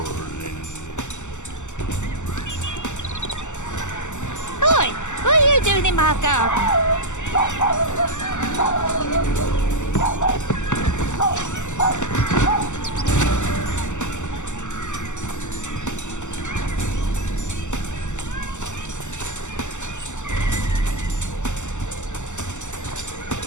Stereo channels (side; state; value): right; late; 0.84 ms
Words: Oi! What are you doing in my garden?